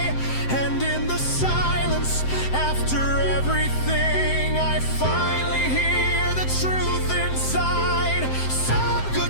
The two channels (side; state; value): right; late; 7.7 ms